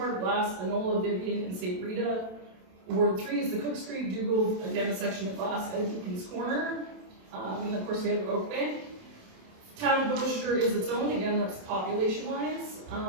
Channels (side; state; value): left; late; 27 ms